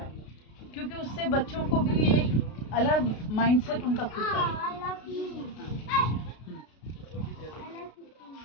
क्योंकि उससे बच्चों को भी एक अलग माइंडसेट उनका खुद का है।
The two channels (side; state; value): right; late; 32 ms